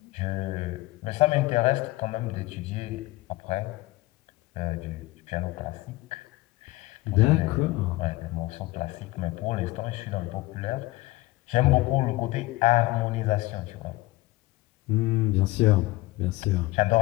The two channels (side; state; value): right; quieter; 19.5 dB